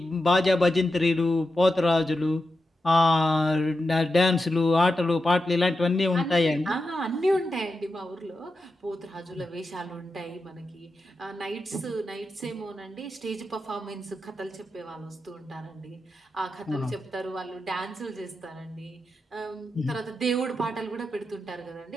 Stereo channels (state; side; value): normal; both; correlation 0.89